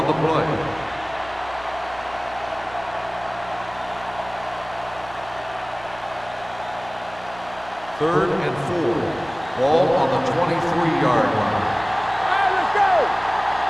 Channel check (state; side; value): noise; right; hum, 20 dB below the sound